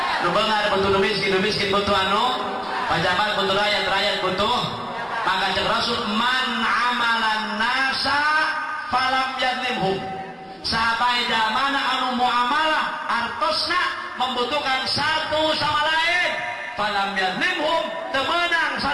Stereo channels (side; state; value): both; identical; correlation 1.00